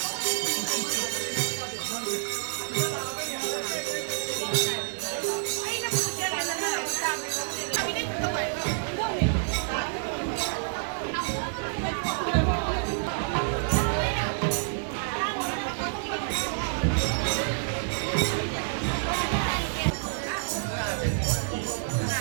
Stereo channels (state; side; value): silent; left; digital silence